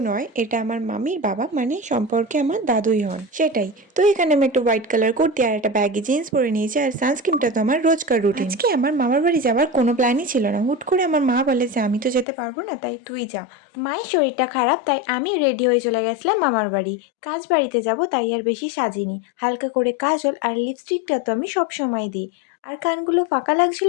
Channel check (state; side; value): drops out; right; at 12.2 s